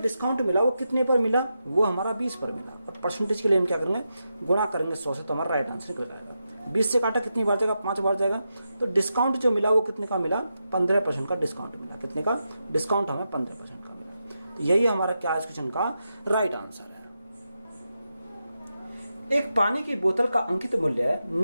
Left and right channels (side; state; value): both; inverted; correlation -0.87